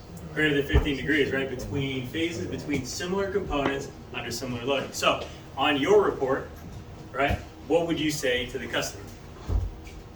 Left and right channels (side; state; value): both; identical; correlation 1.00